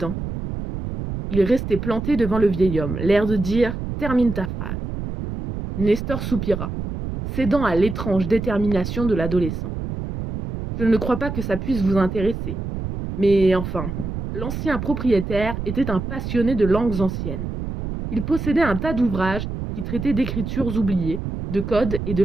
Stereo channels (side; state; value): right; noise; rumble, 5 dB below the sound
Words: Il restait planté devant le vieil homme, l'air de dire termine ta phrase. Nestor soupira, cédant à l'étrange détermination de l'adolescent. Je ne crois pas que ça puisse vous intéresser. Mais enfin, l'ancien propriétaire était un passionné de langues anciennes. Il possédait un tas d'ouvrages qui traitaient d'écritures oubliées, de codes et